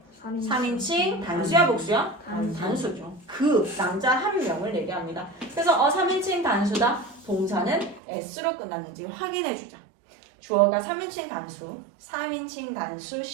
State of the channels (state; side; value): drops out; left; at 8.0 s